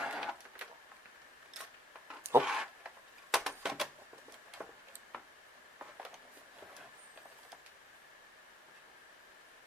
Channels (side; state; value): both; normal; correlation 0.72